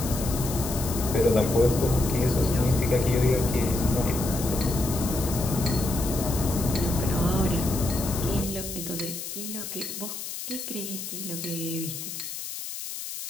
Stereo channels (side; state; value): left; noise; hiss, 8 dB below the sound